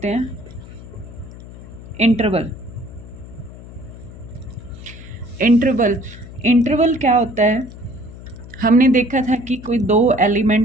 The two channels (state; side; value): noise; left; hum, 16 dB below the sound